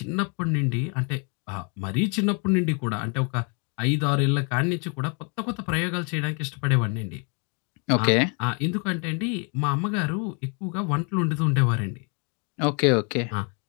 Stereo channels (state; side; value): quieter; right; 36.6 dB